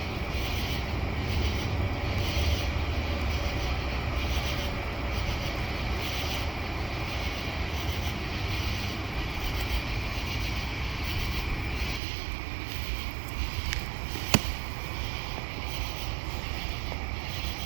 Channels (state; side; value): drops out; left; at 12.0 s